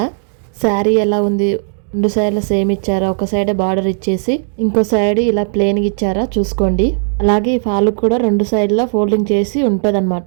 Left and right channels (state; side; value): silent; left; 70 dB below the other